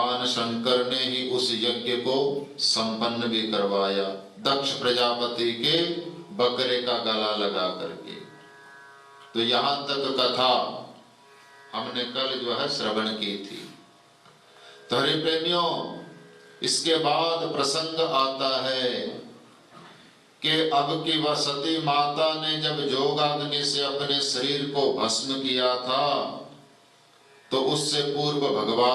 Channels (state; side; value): identical; both; correlation 1.00